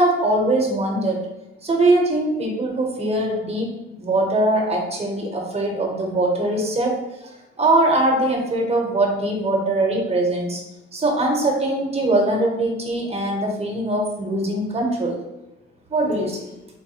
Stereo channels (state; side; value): normal; both; correlation 0.42